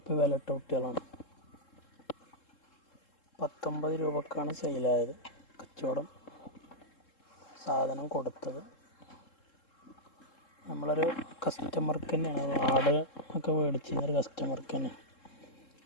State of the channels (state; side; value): late; right; 3.7 ms